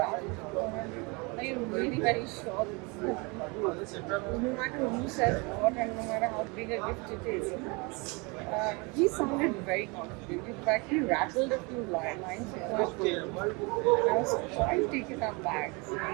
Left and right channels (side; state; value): left; quieter; 28.9 dB